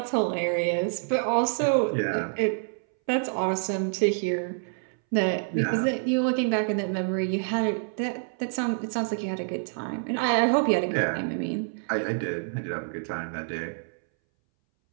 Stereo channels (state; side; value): silent; left; 60 dB below the other